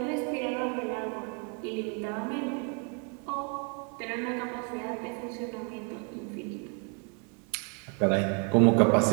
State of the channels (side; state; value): left; quieter; 38.1 dB